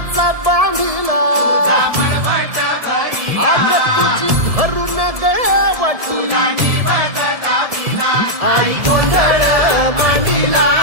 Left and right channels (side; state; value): left; late; 1.7 ms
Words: बांधिला आग तुझी भरून गवटी आई गोंधळ मांडीला